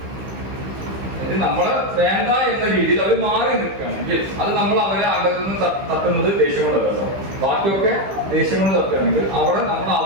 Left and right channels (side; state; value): left; late; 15 ms